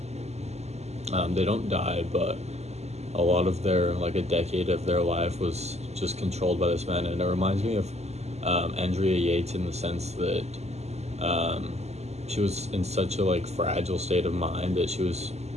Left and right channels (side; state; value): left; late; 0.32 ms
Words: they don't die, but a lot of their like a decade of their life was just controlled by this man. And it reminds me of Andrea Yates in the sense that um, she was in such a like fragile state of mind that she was